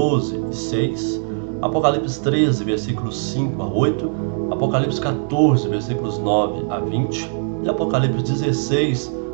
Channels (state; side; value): silent; left; digital silence